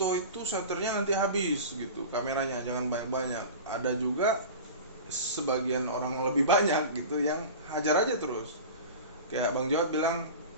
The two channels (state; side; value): inverted; both; correlation -0.33